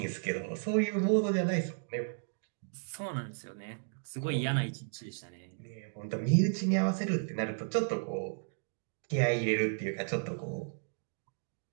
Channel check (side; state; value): left; silent; digital silence